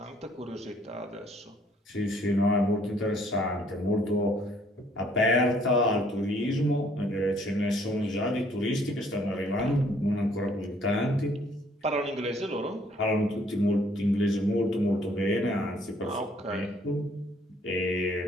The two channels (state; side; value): normal; both; correlation 0.63